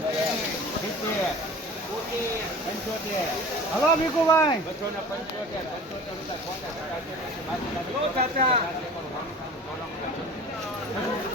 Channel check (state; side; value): normal; both; correlation 0.40